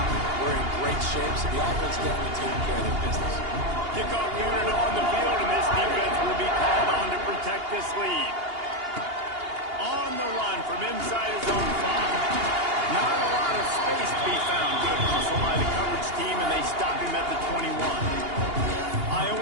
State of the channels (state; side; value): late; left; 2.8 ms